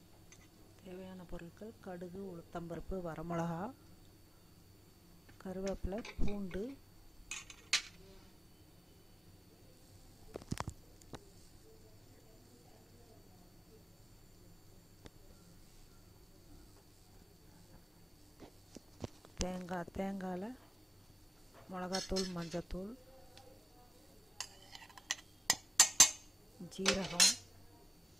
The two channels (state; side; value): normal; both; correlation 0.93